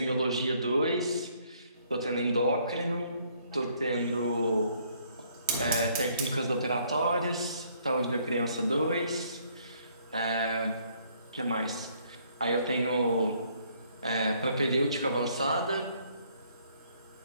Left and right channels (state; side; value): inverted; both; correlation -0.65